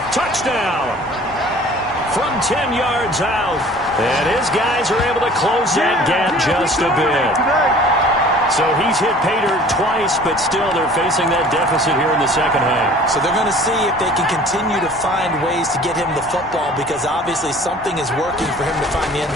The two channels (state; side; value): normal; both; correlation 0.48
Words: Touchdown. From 10 yards out. And his guys are able to close that gap just a bit. So he's hit pay dirt twice, but still they're facing that deficit here in the second half. So they're going to see if they can continue to find ways to get him the football, because obviously something is working for him to find the